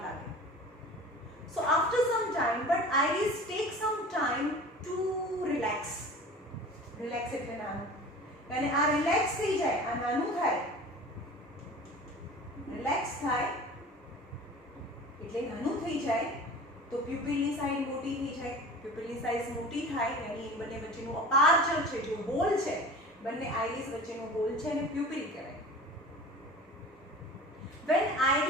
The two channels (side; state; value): both; normal; correlation 0.39